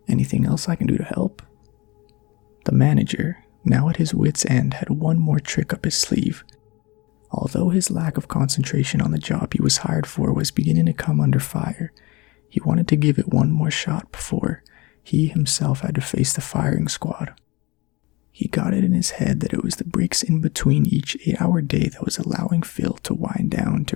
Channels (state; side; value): quieter; right; 23.8 dB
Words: "anything else I can do to help?" The manager, now at his wit's end, had one more trick up his sleeve. Although his lack of concentration on the job he was hired for was beginning to come under fire, he wanted to give it one more shot before he himself had to face the firing squad. He got it in his head that it was the breaks in between each 8-hour day that was allowing Phil to wind down